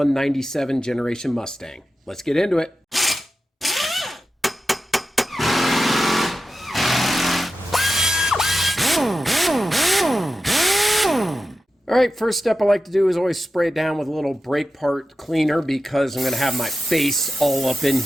generation Mustang. Let's get into it. Alright, first step I like to do is always spray it down with a little brake part cleaner because I'm going to have my face all up in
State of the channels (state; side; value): normal; both; correlation 0.92